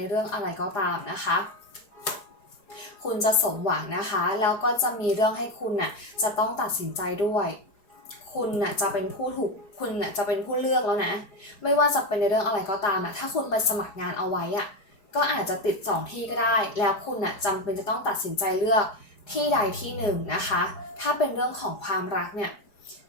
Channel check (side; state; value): right; late; 4.8 ms